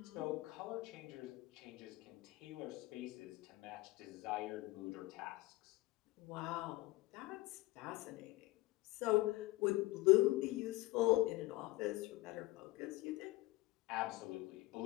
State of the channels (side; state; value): right; quieter; 19.9 dB